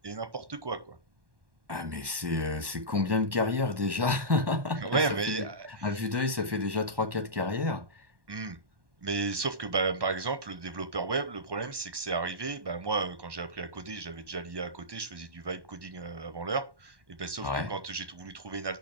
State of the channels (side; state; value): left; late; 1.1 ms